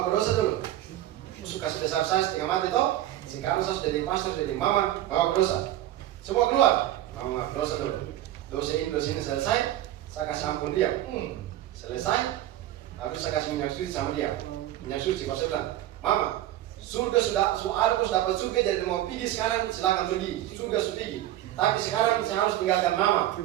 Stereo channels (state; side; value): quieter; left; 13.7 dB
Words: berdosa dulu. Suka sebesar saya setengah mati toh. Sekarang saya sudah jadi pastor, jadi mama, mau berdosa. Semua keluar, mama berdosa dulu. Dosa ini selesai, saya kasih ampun dia. Selesai, habis saya kasih minyak suci sama dia. Minyak suci, kalau saya bilang, Mama, surga sudah dapat surga, jadi mau pergi sekarang silakan pergi, surga sudah pergi. Tapi sekarang saya harus tinggalkan Mama,